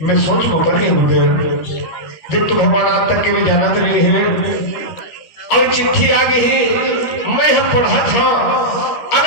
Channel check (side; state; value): right; late; 13 ms